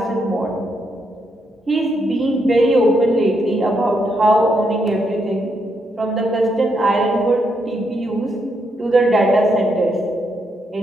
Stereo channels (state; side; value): normal; both; correlation 0.78